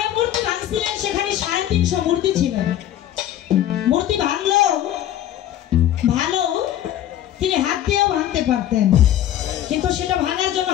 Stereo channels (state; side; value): quieter; right; 11.8 dB